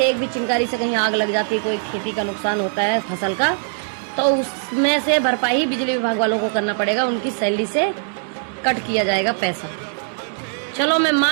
एक भी चिंगारी से कहीं आग लग जाती है, कोई खेती का नुकसान होता है फसल का, तो उसमें से भरपाई बिजली विभाग वालों को करना पड़ेगा, उनकी सैलरी से कट किया जाएगा पैसा। चलो मैं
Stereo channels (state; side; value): silent; left; digital silence